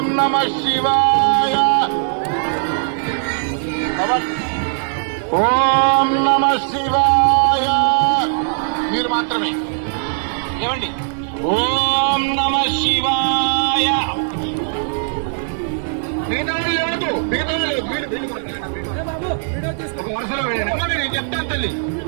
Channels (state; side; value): silent; left; 67 dB below the other